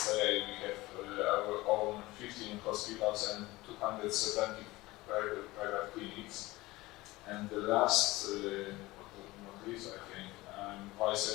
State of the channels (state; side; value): quieter; right; 19.8 dB